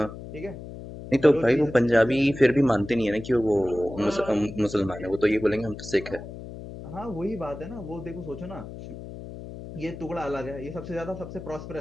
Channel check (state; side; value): noise; left; hum, 12 dB below the sound